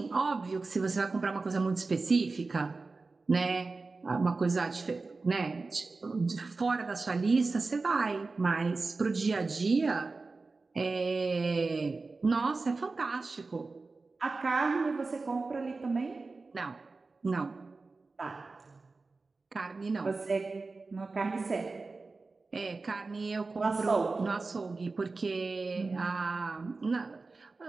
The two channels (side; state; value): left; quieter; 3.8 dB